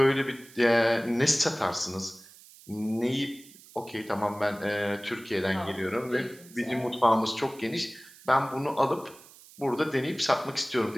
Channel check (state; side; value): noise; right; hiss, 22 dB below the sound